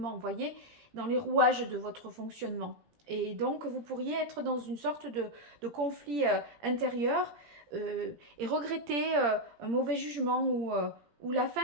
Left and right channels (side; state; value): left; late; 17 ms